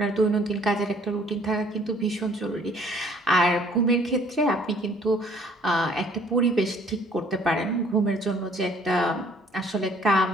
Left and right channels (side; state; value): both; normal; correlation 0.58